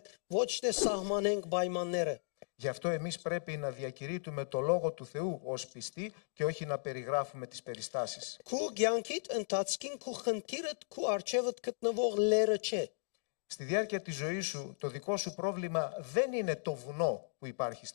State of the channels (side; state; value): right; silent; digital silence